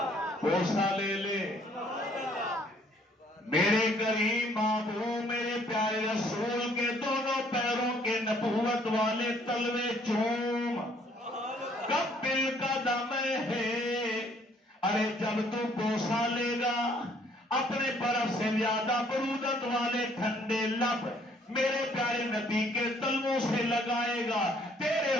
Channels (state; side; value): normal; both; correlation 0.63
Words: بوسہ لے لے، میرے کریم محبوب میرے پیارے رسول کے دونوں پیروں کے نبوت والے تلوے چوم۔ قبل قدم ہے، ارے جب تو بوسہ لے گا، اپنے برف سے زیادہ برودت والے ٹھنڈے لب میرے پیارے نبی کے تلووں سے لگائے گا، تیرے